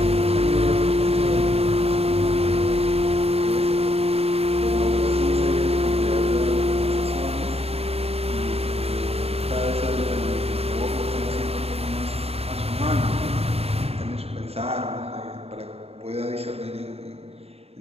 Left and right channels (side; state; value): left; late; 0.29 ms